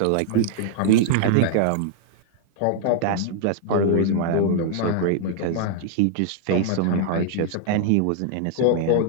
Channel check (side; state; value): both; different; correlation -0.01